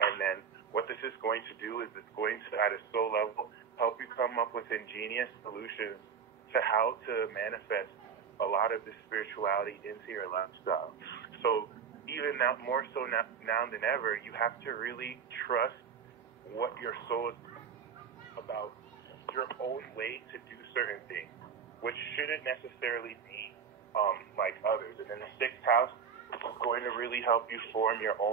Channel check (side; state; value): left; quieter; 6.9 dB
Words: then what this is going to do is it's going to, at a soul level, help you come up with ingenious solutions to how to manifest a lot of this spirituality into your lifestyle. So even now, more so now than ever, you have to really trust what your soul is about, your own way to do certain things, which shouldn't necessarily be like others. And then the 6th house is going to really help you form your